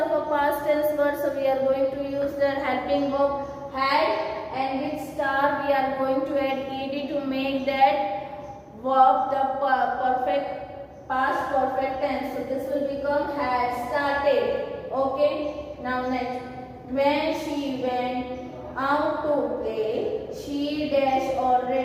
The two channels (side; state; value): both; identical; correlation 1.00